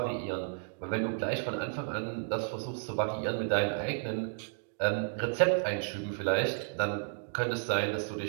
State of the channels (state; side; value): silent; left; digital silence